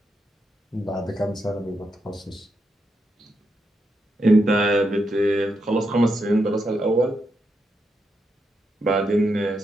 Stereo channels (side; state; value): both; normal; correlation 0.83